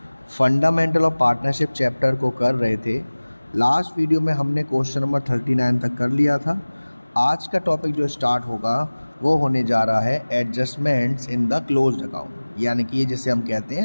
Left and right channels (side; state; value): both; inverted; correlation -1.00